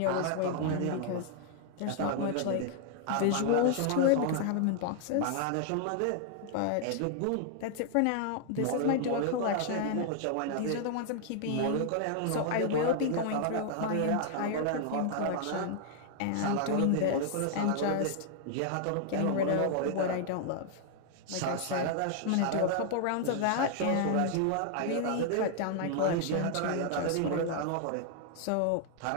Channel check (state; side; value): different; both; correlation 0.00